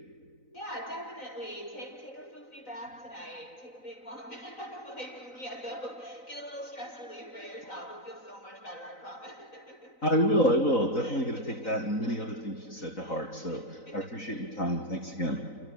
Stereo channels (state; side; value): late; right; 3.9 ms